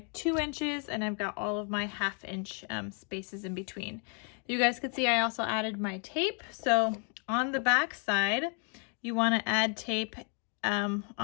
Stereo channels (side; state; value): right; quieter; 40.0 dB